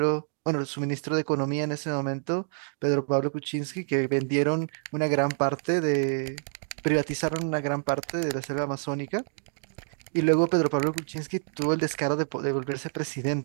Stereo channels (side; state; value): left; silent; digital silence